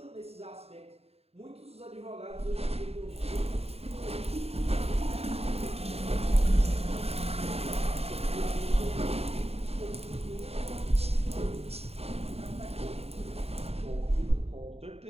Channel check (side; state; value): left; late; 0.29 ms